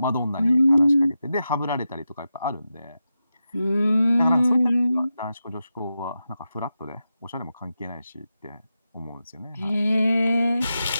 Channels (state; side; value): inverted; both; correlation -0.90